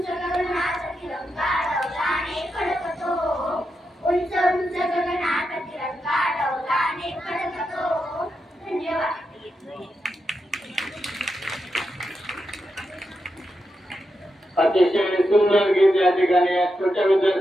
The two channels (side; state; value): both; normal; correlation 0.86